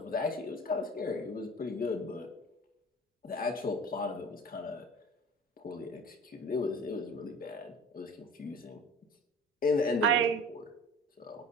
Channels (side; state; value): both; normal; correlation 0.41